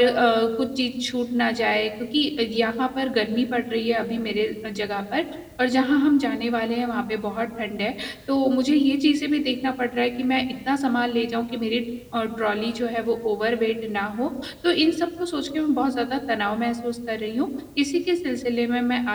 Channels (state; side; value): identical; both; correlation 1.00